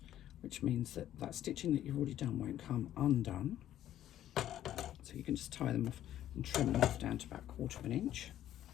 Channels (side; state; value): right; quieter; 12.0 dB